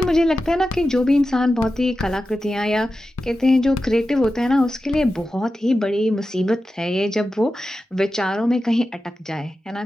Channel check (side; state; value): both; normal; correlation 0.92